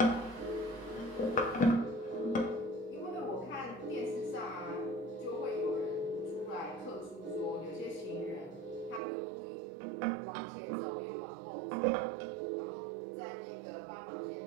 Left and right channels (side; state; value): left; drops out; at 9.0 s